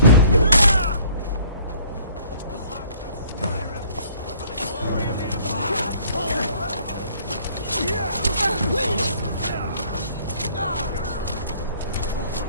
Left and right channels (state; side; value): inverted; both; correlation -0.58